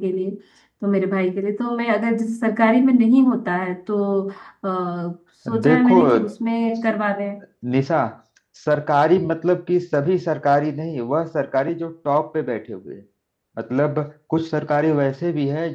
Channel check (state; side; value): identical; both; correlation 1.00